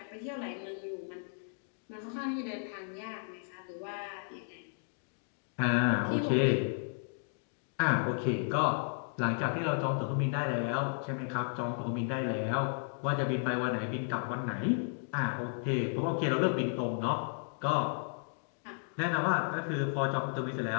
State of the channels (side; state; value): right; silent; digital silence